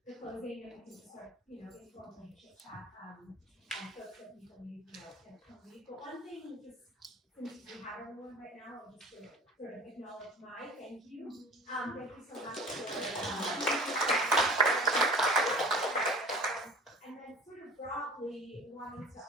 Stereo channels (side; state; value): both; normal; correlation 0.42